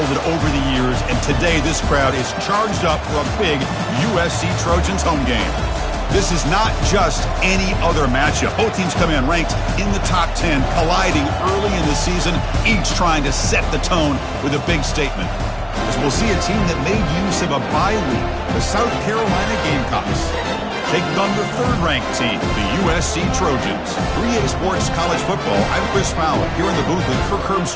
over the years, and today this crowd is charged up for a big USC Trojans home game. This is not just any other matchup. Both teams come in ranked in the top 10, colliding early in the season, each trying to set the tone with a big statement. As we'll see a team that made use of a bye week, the South Carolina Gamecocks, taking on the third-ranked team, the USC Trojans. 3A Sports College Football, I'm Chris Fowler, here in the booth with Kirk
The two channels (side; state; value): both; identical; correlation 1.00